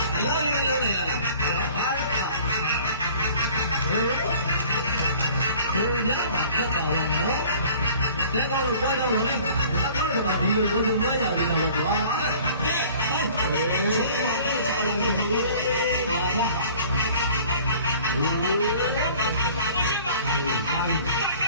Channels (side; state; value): both; inverted; correlation -0.49